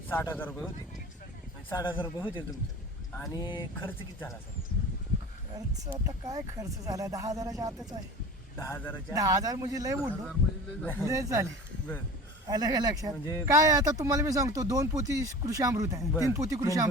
60,000 रुपये होते. म्हणजे 60,000 रुपये होते तुमचं. आणि खर्च किती झाला सर? खर्च आता काय खर्च झाला, 10,000च्या आतच आहे. 10,000च्या 10,000 म्हणजे लय बोललो, म्हणजे लय झालं. लय झाले. बर. आलं का लक्षात? म्हणजे- काय आता तुम्हाला मी सांगतो, 2 पोती कृषी अमृत आहे, बरं. 3 पोती कृषी 3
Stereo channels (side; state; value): both; normal; correlation 0.38